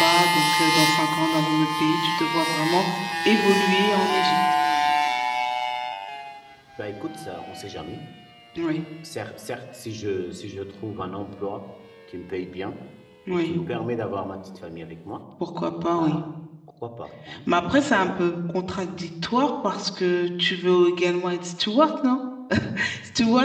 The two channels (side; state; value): both; identical; correlation 1.00